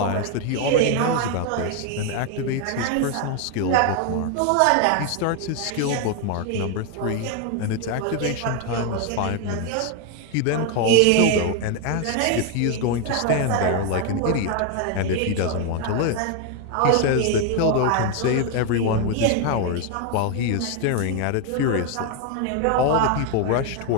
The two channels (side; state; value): both; different; correlation 0.01